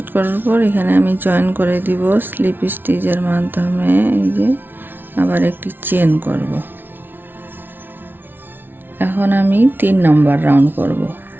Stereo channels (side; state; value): left; late; 0.097 ms